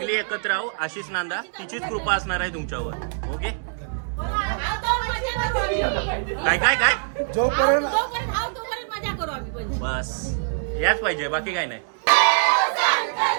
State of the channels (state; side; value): silent; left; digital silence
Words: एकत्र राहू. आशिष नांदा तिचीच कृपा असणार आहे तुमच्यावर. ओके. काय काय काय जोपर्यंत तोपर्यंत मजा करू आम्ही पण. बस याच पाहिजे बाकी काय नाही.